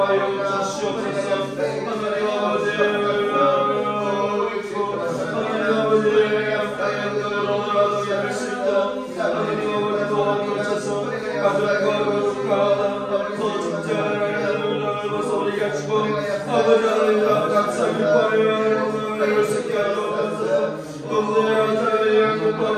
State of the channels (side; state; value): both; identical; correlation 1.00